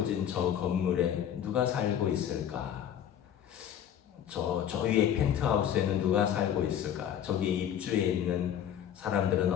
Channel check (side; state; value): right; quieter; 9.7 dB